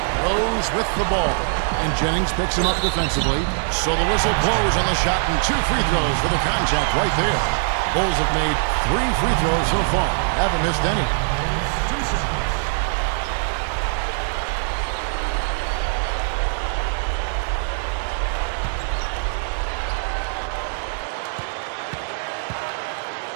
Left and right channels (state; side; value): silent; left; digital silence